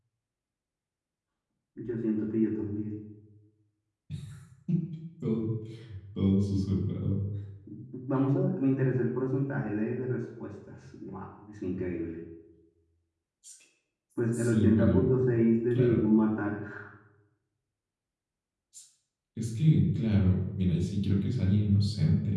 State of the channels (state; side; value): identical; both; correlation 1.00